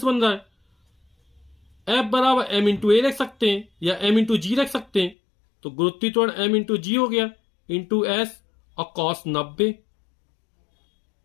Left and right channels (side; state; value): right; drops out; at 5.2 s